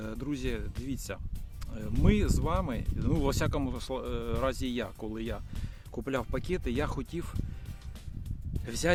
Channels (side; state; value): both; identical; correlation 1.00